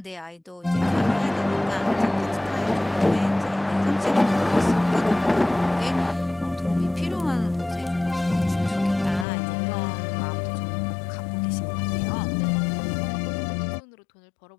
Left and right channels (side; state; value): right; drops out; at 9.2 s